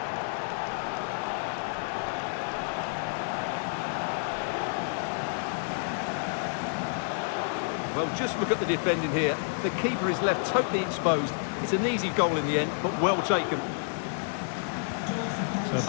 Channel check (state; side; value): silent; right; 58 dB below the other